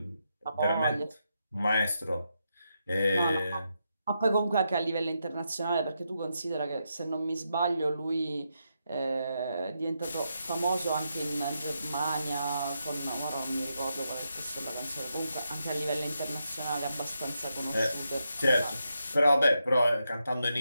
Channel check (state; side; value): inverted; both; correlation -0.83